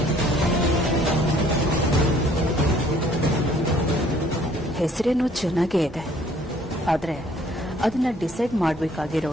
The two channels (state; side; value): normal; both; correlation 0.59